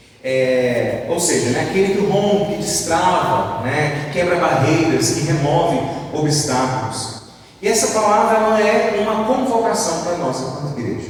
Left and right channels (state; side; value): identical; both; correlation 1.00